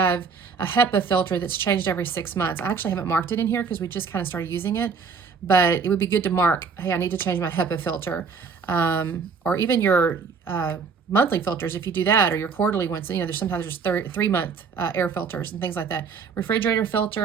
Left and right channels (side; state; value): left; quieter; 5.5 dB